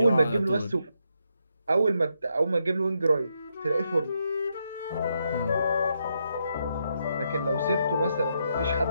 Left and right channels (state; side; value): inverted; both; correlation -0.80